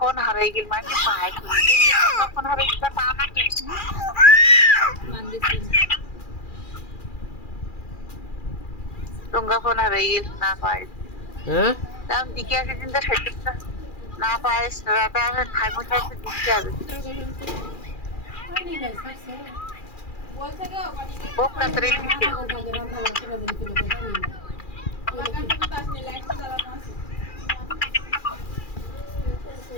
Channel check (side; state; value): right; late; 2.4 ms